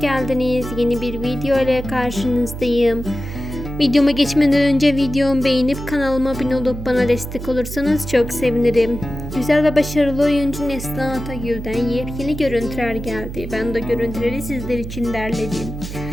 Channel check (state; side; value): noise; right; hum, 8 dB below the sound